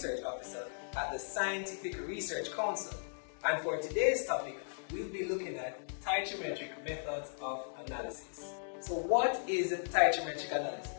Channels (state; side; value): silent; right; digital silence